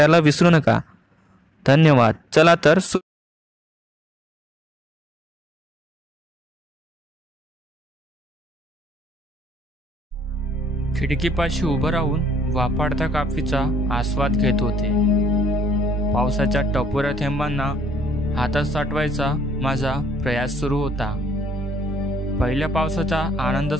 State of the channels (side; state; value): both; normal; correlation 0.77